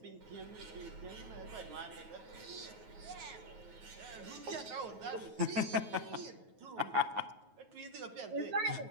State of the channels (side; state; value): left; late; 9.4 ms